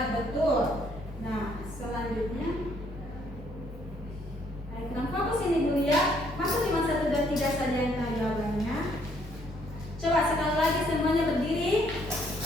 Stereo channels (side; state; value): both; normal; correlation 0.67